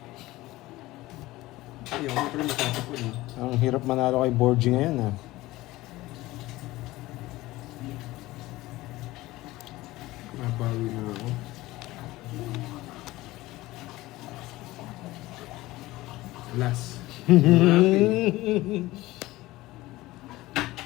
Ay, ako pala matatapon. Ang hirap manalo kay Borgie ngayon, ha. Nabawi na ako. Last.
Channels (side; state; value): right; quieter; 18.3 dB